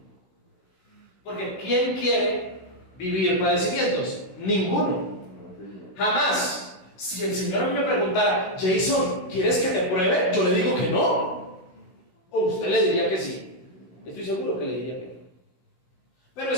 Porque ¿quién quiere vivir padecimientos? Ninguno. Jamás. Si el Señor a mí me preguntara, Jason, ¿quieres que te pruebe? Yo le digo que no. O usted le diría que sí. Estoy seguro que le diría que no. Pero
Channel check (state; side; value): late; right; 16 ms